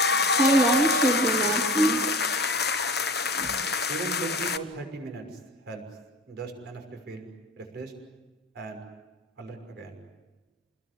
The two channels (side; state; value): both; normal; correlation 0.36